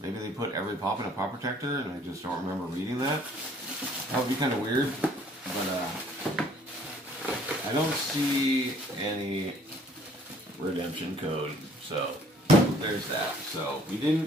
Maybe they put every pop in a pop protector and I just don't remember reading that. That would be kind of weird, but I don't see any redemption code, so there's that. So we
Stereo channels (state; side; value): normal; both; correlation 0.58